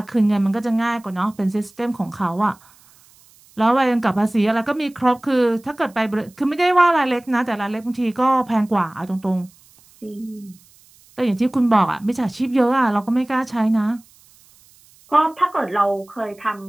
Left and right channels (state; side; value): noise; right; hiss, 29 dB below the sound